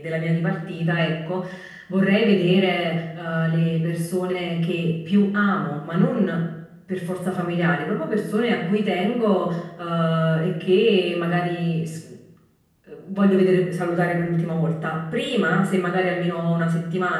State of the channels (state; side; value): identical; both; correlation 1.00